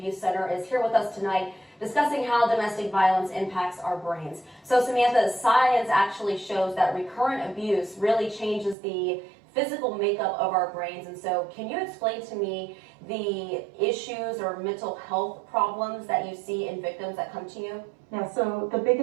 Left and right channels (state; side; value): drops out; left; at 8.8 s